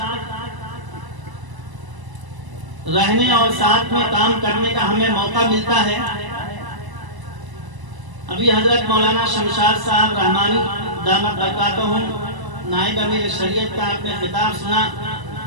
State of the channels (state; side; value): late; left; 1.0 ms